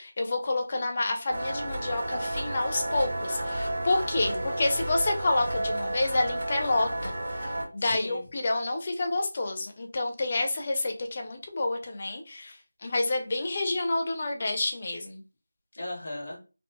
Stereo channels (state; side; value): inverted; both; correlation -0.95